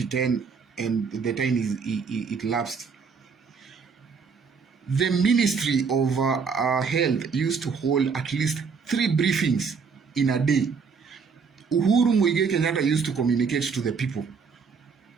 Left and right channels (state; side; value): quieter; left; 5.5 dB